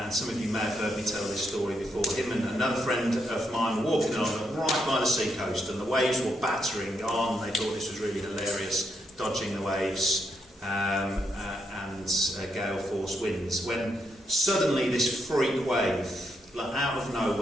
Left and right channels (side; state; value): both; normal; correlation 0.79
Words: some of you may have heard me tell this story before. Him and another friend of mine were walking along right by the sea coast, and the waves were battering on. They thought this was really hilarious, dodging the waves and gale force winds, when suddenly this freak wave, out of